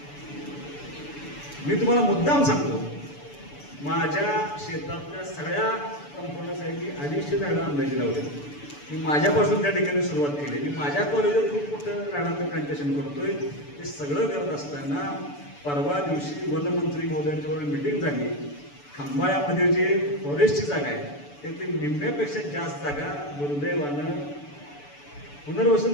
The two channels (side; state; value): right; late; 6.9 ms